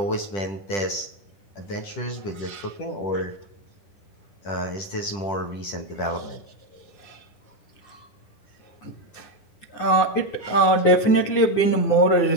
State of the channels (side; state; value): right; late; 10 ms